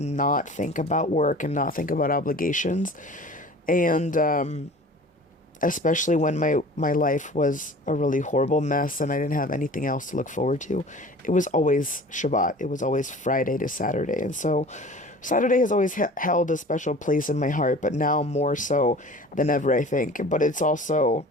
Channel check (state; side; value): normal; both; correlation 0.43